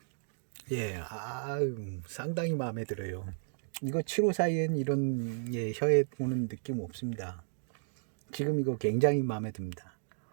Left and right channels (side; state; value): left; silent; digital silence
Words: 예, 상당히 마음에 들어요. 이거 7호 사이엔 이런 혀에 오는 느낌 없습니다. 지금 이거 굉장히 마음에 듭니다.